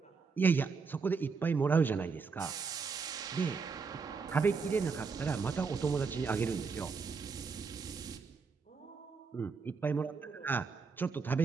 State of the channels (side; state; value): left; quieter; 5.0 dB